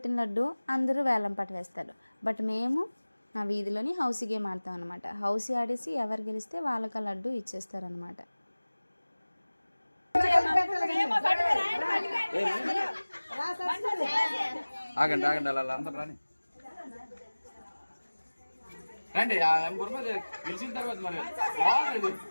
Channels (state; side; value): inverted; both; correlation -1.00